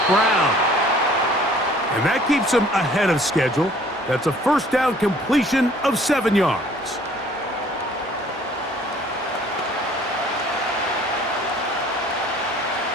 Brown. And that keeps him ahead of schedule. That's a first down completion of 7 yards.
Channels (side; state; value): both; normal; correlation 0.55